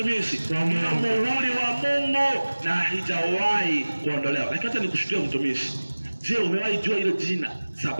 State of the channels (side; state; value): both; inverted; correlation -1.00